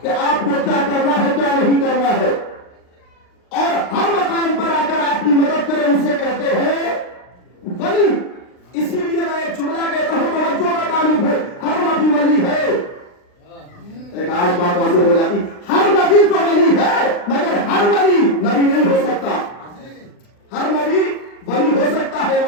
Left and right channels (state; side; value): late; right; 39 ms